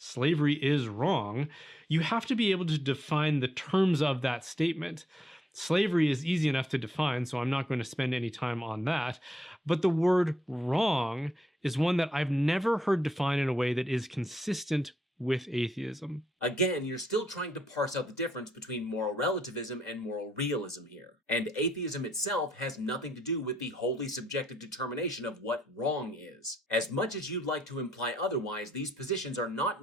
is wrong, you have to be able to define the terms of that statement. Slavery is easy enough to define, so I'm not going to spend any time on that. But the word wrong is one that I've never heard defined in a way that is consistent with atheism. Again, you're still trying to parse out the difference between moral relativism and moral realism here. And atheism itself has nothing to do with the wholly subjective determination of what wrong is. As much as you'd like to imply otherwise, these positions are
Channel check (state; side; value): normal; both; correlation 0.77